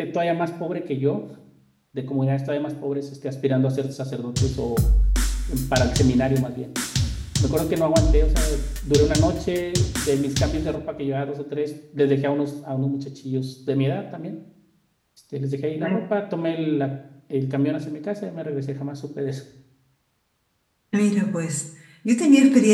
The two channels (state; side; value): identical; both; correlation 1.00